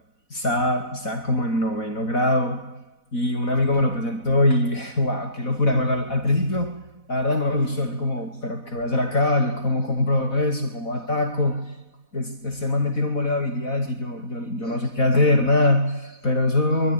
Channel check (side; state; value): right; late; 4.1 ms